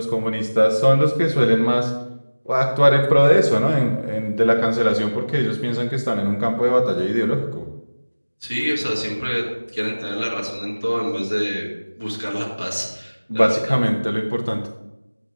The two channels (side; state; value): both; inverted; correlation -1.00